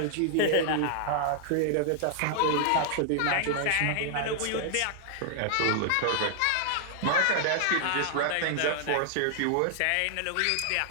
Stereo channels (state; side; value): different; both; correlation -0.01